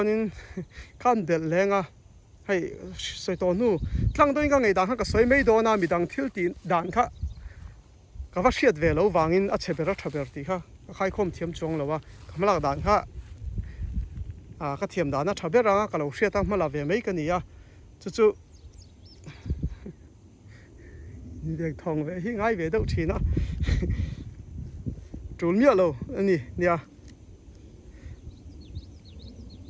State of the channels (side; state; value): both; identical; correlation 1.00